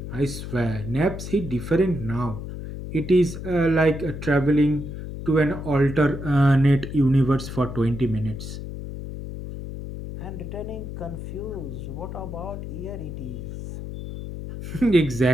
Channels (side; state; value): left; noise; hum, 8 dB below the sound